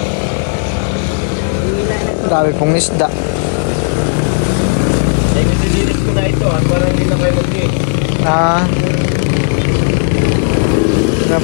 Dami pong isda. Ay, nililinis ko na ito para hindi na kayo mag-iit. Na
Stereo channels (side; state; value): right; silent; digital silence